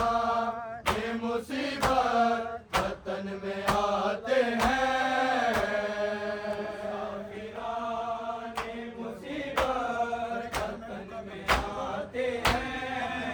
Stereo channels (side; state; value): both; identical; correlation 1.00